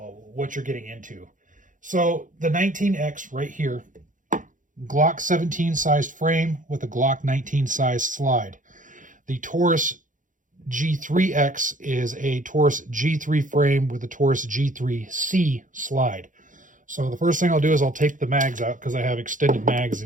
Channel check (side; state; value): left; late; 0.38 ms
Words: what you're getting into. So the 19X right here, Glock 17 sized frame with a Glock 19 sized slide. The Taurus G3X is a Taurus G3 frame with a Taurus G3C slide. So the first thing I'll do is I'll take the mags out because I have extended mags